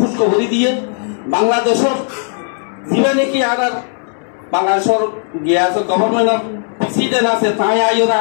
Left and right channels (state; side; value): silent; right; 64 dB below the other